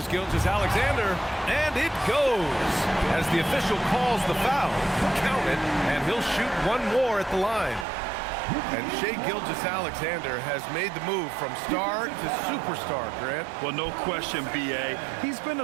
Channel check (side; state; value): left; drops out; at 7.9 s